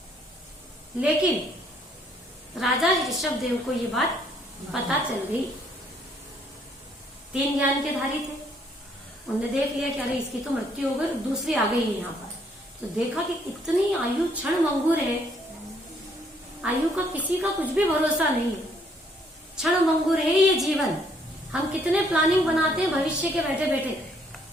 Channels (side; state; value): both; normal; correlation 0.67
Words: लेकिन राजा ऋषभदेव को ये बात पता चल गई। 3 ज्ञान के धारी थे, उन्होंने देख लिया कि अरे इसकी तो मृत्यु हो गई, दूसरी आ गई है यहाँ पर। तो देखा कि इतनी आयु क्षण मंगूर है, आयु का किसी का कुछ भी भरोसा नहीं है, क्षण मंगूर है ये जीवन। हम कितने प्लानिंग बनाते हैं भविष्य के बैठे बैठे,